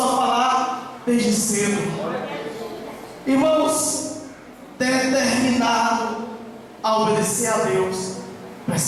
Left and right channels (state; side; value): identical; both; correlation 1.00